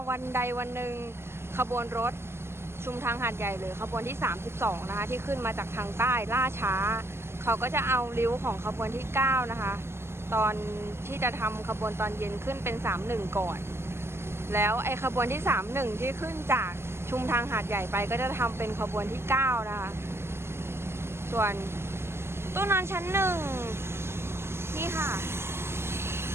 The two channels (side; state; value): left; late; 0.12 ms